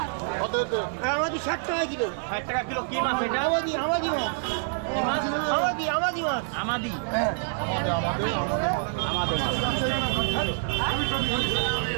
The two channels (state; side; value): silent; left; 60 dB below the other